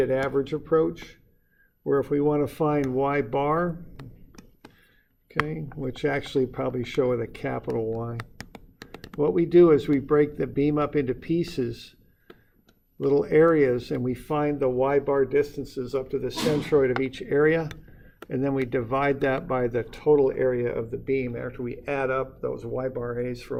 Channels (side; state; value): both; identical; correlation 1.00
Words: average approach, where if we want to find y bar, okay, which actually probably show with a capital Y, what we do is we break the beam up into pieces, little areas, and we find the y bar distances up to the centroid of each area, and then we divide that by the total area of the beam after we add up those y bar a's for